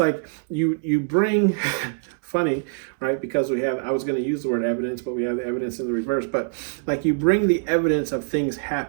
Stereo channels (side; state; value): left; silent; digital silence